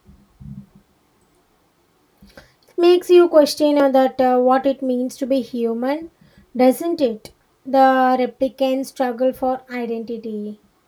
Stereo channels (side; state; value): both; identical; correlation 1.00